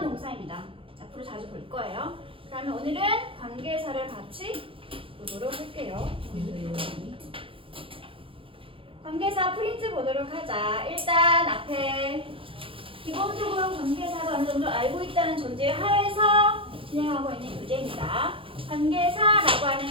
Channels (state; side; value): late; left; 0.26 ms